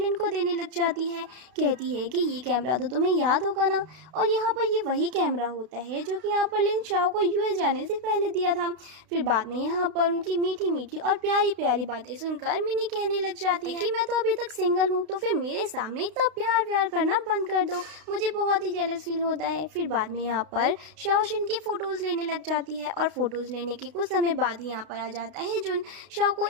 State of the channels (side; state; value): left; late; 32 ms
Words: को देने लग जाती है, कहती है कि ये कैमरा तो तुम्हें याद होगा ना, और यहाँ पर ये वही कैमरा होता है जो कि यहाँ पर लिन शाओ को यूएस जाने से पहले दिया था। फिर बाद में यहाँ पर उनकी मीठी मीठी और प्यारी प्यारी बातें सुनकर मिनी कहने लग जाती है कि मैं तो अभी तक सिंगल हूँ, तो फिर मेरे सामने इतना प्यार व्यार करना बंद कर दो, मुझे बहुत ही जेलस फील होता है। फिर बाद में यहाँ पर शाओ शिन की फ़ोटोज़ लेने लग जाती है, और फ़ोटोज़ लेने के कुछ समय बाद ही यहाँ पर आ जाता है जुन शाओ को